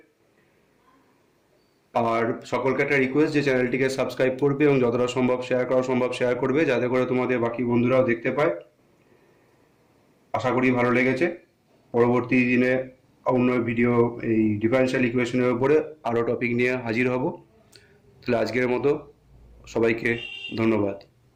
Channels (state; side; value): identical; both; correlation 1.00